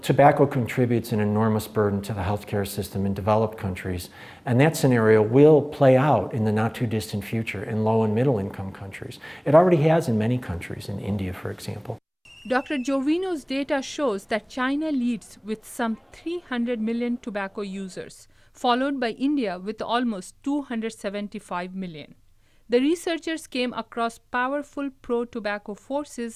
contributes an enormous burden to the healthcare system in developed countries, and that scenario will play out in the not too distant future in low and middle income countries. It already has in many countries, in India, for example. Dr. Jovino's data shows that China leads with some 300 million tobacco users, followed by India with almost 275 million. The researchers came across powerful pro-tobacco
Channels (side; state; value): both; identical; correlation 1.00